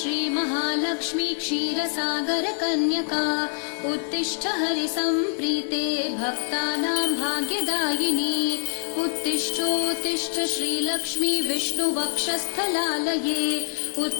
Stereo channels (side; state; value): right; silent; 62 dB below the other